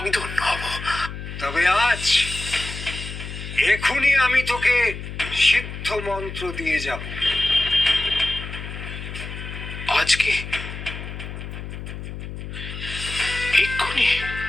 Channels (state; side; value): noise; left; hum, 9 dB below the sound